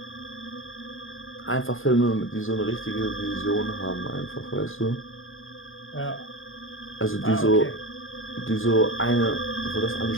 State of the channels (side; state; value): right; late; 0.59 ms